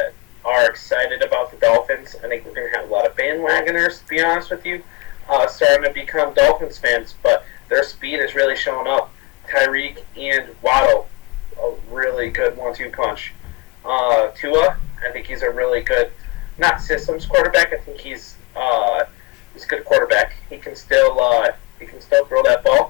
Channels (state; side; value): quieter; right; 24.9 dB